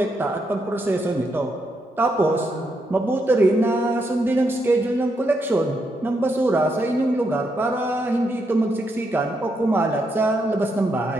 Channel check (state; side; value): normal; both; correlation 0.80